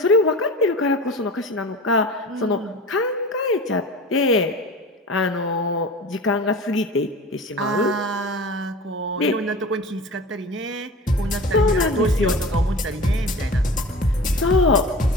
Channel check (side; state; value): both; normal; correlation 0.36